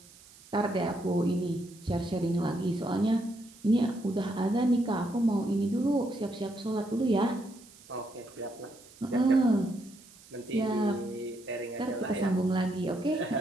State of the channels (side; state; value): right; noise; hiss, 23 dB below the sound